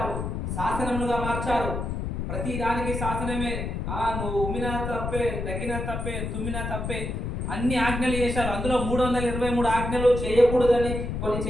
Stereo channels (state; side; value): noise; left; rumble, 3 dB below the sound